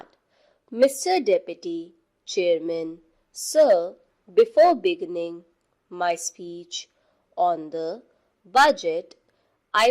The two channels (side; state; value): both; identical; correlation 1.00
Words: Mr. Deputy Chairman, Sir, before beginning my speech on the budget,